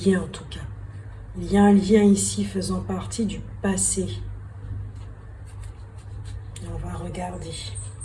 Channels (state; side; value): identical; both; correlation 1.00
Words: en tout cas. Il y a un lien ici faisant partie du passé. Et on va regarder.